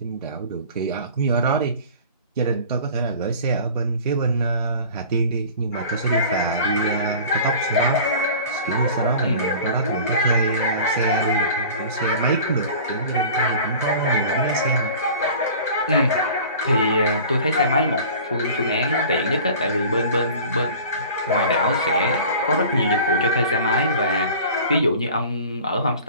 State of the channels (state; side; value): inverted; both; correlation -0.42